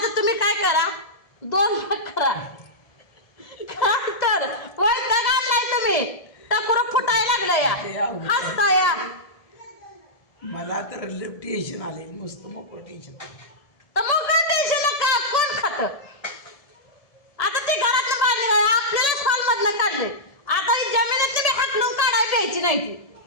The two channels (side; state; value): right; late; 1.7 ms